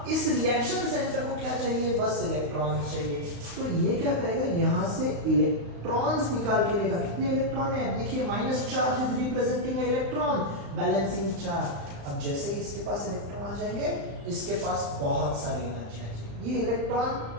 इस रिएक्शन सेंटर को क्या चाहिए, बस इलेक्ट्रॉन्स चाहिए। तो ये क्या करेगा, यहाँ से इलेक्ट्रॉन्स निकाल के लेगा। कितने इलेक्ट्रॉन है, देखिए minus charge is representing electron, balancing charge. अब जैसे इसके पास इलेक्ट्रॉन आ जाएंगे, इसके पास बहुत सारी एनर्जी आ जाएगी। ये इलेक्ट्रॉन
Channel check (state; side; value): late; left; 35 ms